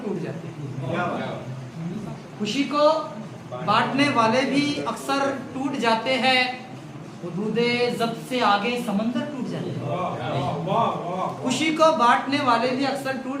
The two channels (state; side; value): identical; both; correlation 1.00